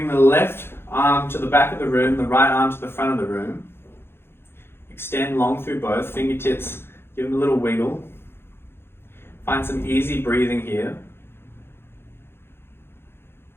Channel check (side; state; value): right; late; 0.11 ms